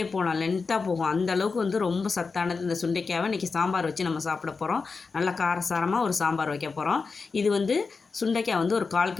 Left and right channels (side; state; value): right; quieter; 4.6 dB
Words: போகலாம், லென்த்தாக போகும். அந்த அளவுக்கு வந்து ரொம்ப சத்தானது இந்த சுண்டைக்காவை இன்றைக்கி சாம்பார் வச்சு நம்ம சாப்பிட போகிறோம். நல்லா காரசாரமாக ஒரு சாம்பார் வைக்க போகிறோம். இது வந்து சுண்டைக்காய் வந்து ஒரு 1/4